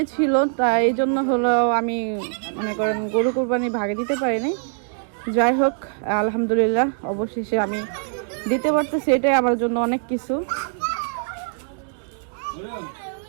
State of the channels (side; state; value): left; silent; digital silence